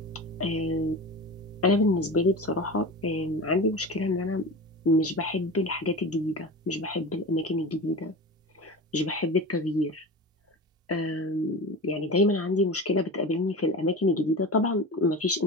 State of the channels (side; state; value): both; normal; correlation 0.30